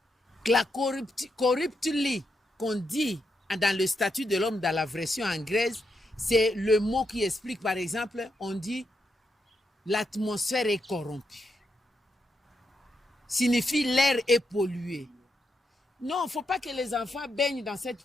La corruptly qu'on dit dans le statut de l'homme dans la version anglaise, c'est le mot qui explique, par exemple, on dit l'atmosphère est corrompue. Signifie l'air est pollué. Non, il ne faut pas que les enfants baignent dans cette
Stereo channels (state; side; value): normal; both; correlation 0.82